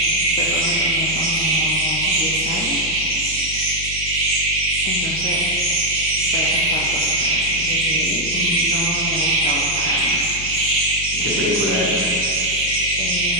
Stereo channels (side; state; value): left; noise; hum, 12 dB below the sound